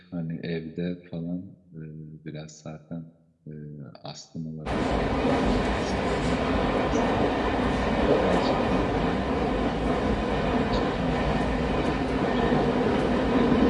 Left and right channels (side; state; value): both; identical; correlation 1.00